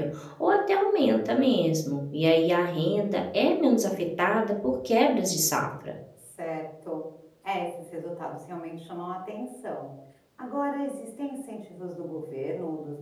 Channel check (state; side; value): identical; both; correlation 1.00